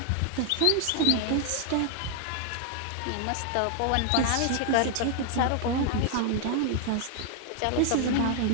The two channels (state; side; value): different; both; correlation 0.00